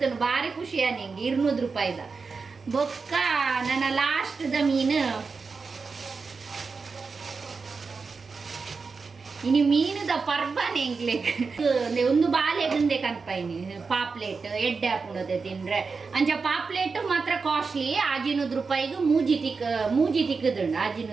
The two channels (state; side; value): quieter; left; 4.7 dB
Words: ಭಾರಿ ಖುಷಿ ನಿಂಗೆ 200 ರೂಪಾಯಿದ ಬೊಕ್ಕ ನನ್ನ ಲಾಸ್ಟ್ದ ಮೀನು ಇನಿ ಮೀನುದ ಪರ್ಬನೆ ಎಂಗ್ಲೆಗ್ ಒಂದು ಬಾಲೆಗಂದೆ ಕನ್ಪೈನಿ ಪಾಪ್ಲೆಟ್ ಎಡ್ಡೆ ಹಾಪುಣತೆ ತಿಂದ್ರೆ ಅಂಚ ಪಾಪ್ಲೆಟ್ ಮಾತ್ರ ಕಾಸ್ಟ್ಲಿ 100 ರೂಪಾಯಿಗೆ ಮೂಜಿ ತಿಕ್ಕದುಂಡು